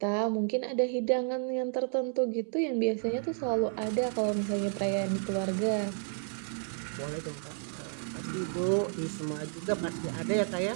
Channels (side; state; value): left; silent; 57 dB below the other